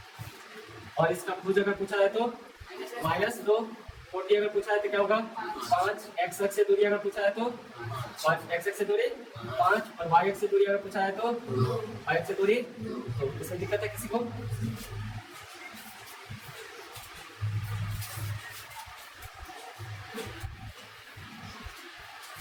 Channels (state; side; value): identical; both; correlation 1.00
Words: और इसका भुज अगर पूछा जाए तो -2। कोटि अगर पूछा जाए तो क्या होगा 5। x अक्ष से दूरी अगर पूछा जाए तो 5 x x से दूरी 5 और y x से दूरी अगर पूछा है तो y x से दूरी, तो इसमें दिक्कत है किसी को?